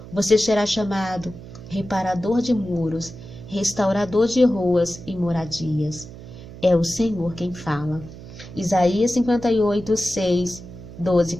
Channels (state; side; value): noise; right; hum, 15 dB below the sound